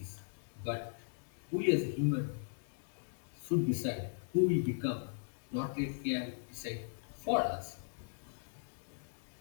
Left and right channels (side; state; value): right; silent; digital silence